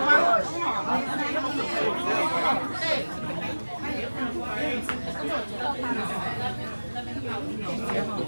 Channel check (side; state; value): both; inverted; correlation -1.00